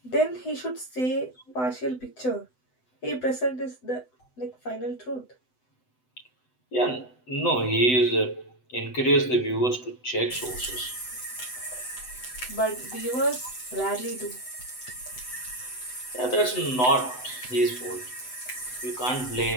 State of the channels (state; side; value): late; right; 7.9 ms